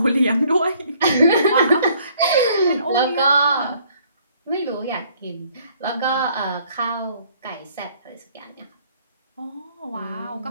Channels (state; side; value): inverted; both; correlation -0.62